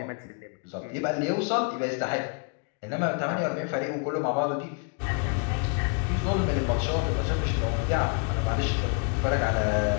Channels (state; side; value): quieter; right; 38.1 dB